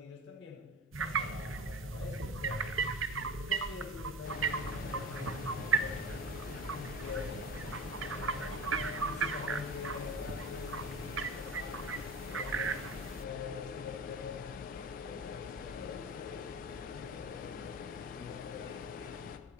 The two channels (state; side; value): normal; both; correlation 0.32